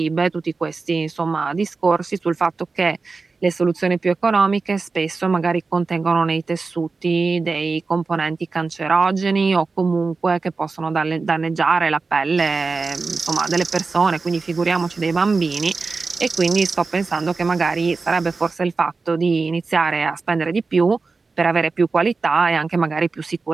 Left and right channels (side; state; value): left; quieter; 4.2 dB